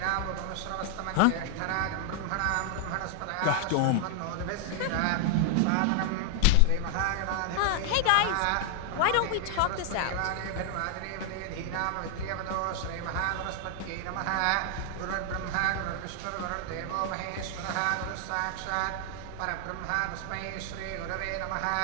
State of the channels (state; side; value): different; both; correlation 0.00